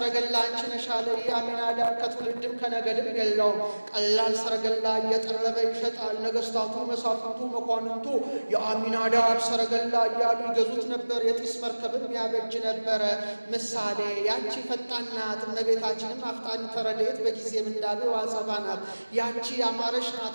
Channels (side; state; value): both; inverted; correlation -1.00